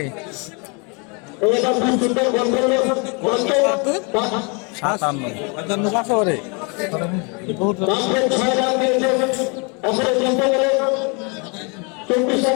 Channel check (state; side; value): quieter; right; 33.2 dB